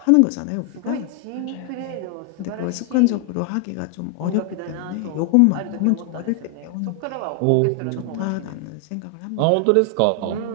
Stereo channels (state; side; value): different; both; correlation 0.00